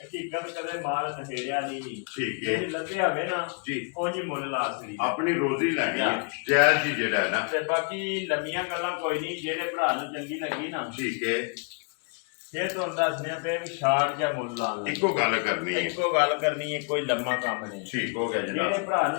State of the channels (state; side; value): quieter; right; 37.4 dB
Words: ਕਦੇ ਮਾਲ ਨਸ਼ੇੜਿਆ ਨਹੀਂ ਠੀਕ ਹੈ ਜੇ ਲੱਭਿਆ ਹੋਵੇ ਨਾ ਜੀ ਉਹ ਜੀ ਮੁੱਲ ਲਾ ਸਕਦੀ ਆਪਣੀ ਰੋਜ਼ੀ ਲੈਣੀ ਹੈ ਜਾਇਜ਼ ਜੀ ਜਿਹੜਾ ਹੈ ਨਾ ਤੇ ਬਾਕੀ ਲੰਮੀਆਂ ਗੱਲਾਂ ਕੋਈ ਨਹੀਂ ਜਿਹੜੇ ਭਰਾ ਨੂੰ ਚੰਗੀ ਲੱਗੀ ਨਾ ਠੀਕ ਹੈ ਫਿਰ ਤੁਹਾਨੂੰ ਦੱਸਦੇ ਪਏ ਵੀ ਸ਼ਾਰਟ ਜਾਂ ਮੁੱਲ ਲਾਉਣ ਲੱਗੇ ਇੱਕੋ ਗੱਲ ਕਰਨੀ ਹੈ ਇੱਕੋ ਗੱਲ ਕਰਨੀ ਹੈ ਕੋਈ ਲੰਮਾ ਕੰਮ ਨਹੀਂ ਠੀਕ ਹੋ ਗਿਆ ਜਿਹੜੇ ਜਨਾਬ ਭਰਾ